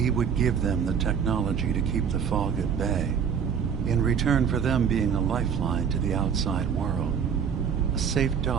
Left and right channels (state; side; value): quieter; left; 7.3 dB